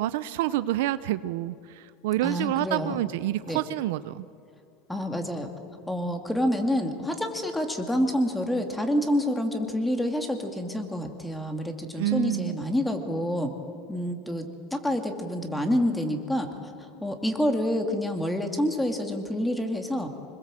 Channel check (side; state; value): both; normal; correlation 0.59